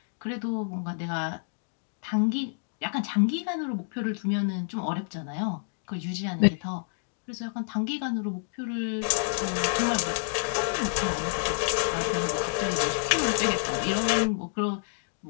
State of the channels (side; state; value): right; silent; digital silence